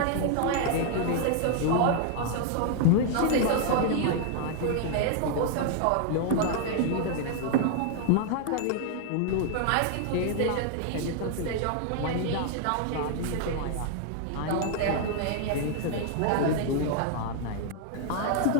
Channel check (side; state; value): both; different; correlation 0.00